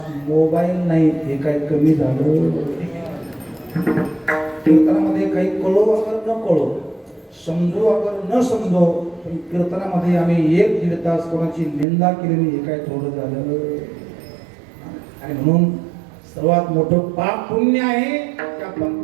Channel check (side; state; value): left; drops out; at 11.9 s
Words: मोबाईल नाही हे काही कमी झालं कीर्तनामध्ये काही कळो अगर न कळो समजो अगर न समजो पण कीर्तनामध्ये आम्ही 1-1.5 तास कोणाची निंदा केलेली हे काय थोडं झालं आणि म्हणून सर्वात मोठं पाप पुण्य आहे की आपण